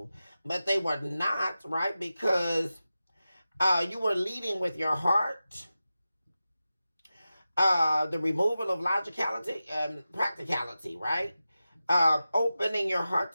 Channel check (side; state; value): both; inverted; correlation -0.94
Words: But they were not, right? Because you were leading with your heart. The removal of logicality and practicality, right? Opening your heart